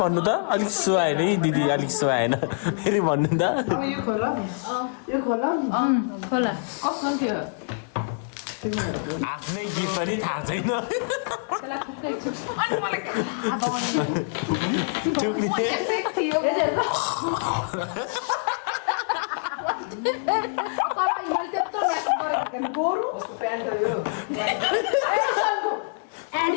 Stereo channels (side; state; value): right; silent; 61 dB below the other